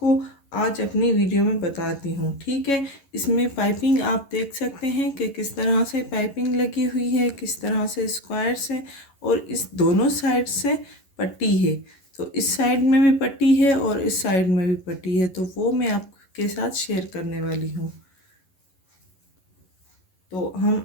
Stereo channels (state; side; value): late; right; 11 ms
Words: आज अपनी वीडियो में बताती हूँ, ठीक है। इसमें पाइपिंग आप देख सकते हैं कि किस तरह से पाइपिंग लगी हुई है, किस तरह से स्क्वायर्स है और इस दोनों साइड से पट्टी है। तो इस साइड में भी पट्टी है और इस साइड में भी पट्टी है, तो वो मैं आपके साथ शेयर करने वाली हूँ। तो हम